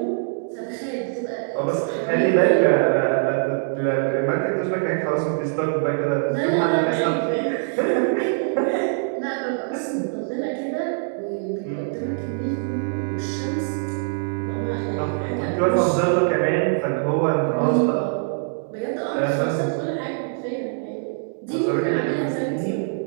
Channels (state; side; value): silent; left; digital silence